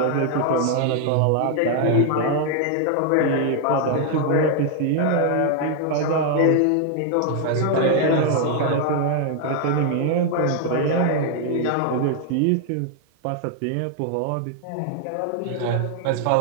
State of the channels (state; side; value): different; both; correlation 0.00